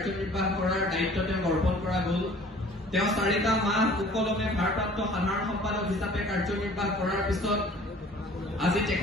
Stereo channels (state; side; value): normal; both; correlation 0.51